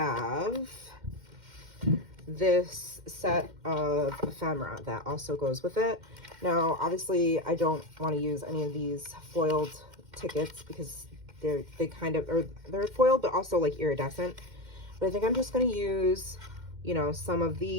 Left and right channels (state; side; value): late; left; 2.1 ms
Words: this set of ephemera that also goes with it. Now, obviously, I don't want to use any of these foiled tickets because they're foiled, but also like iridescent. But I think I'm just going to use, you know, some of